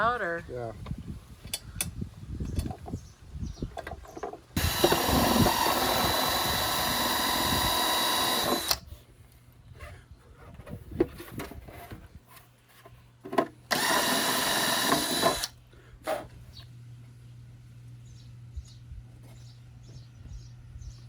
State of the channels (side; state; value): both; identical; correlation 1.00